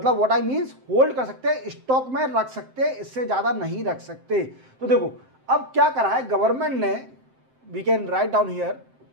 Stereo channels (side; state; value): left; late; 7.7 ms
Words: व्हाट आई मीन्स होल्ड कर सकते हैं, स्टॉक में रख सकते हैं, इससे ज़्यादा नहीं रख सकते। तो देखो अब क्या करा है गवर्नमेंट ने, we can write down here,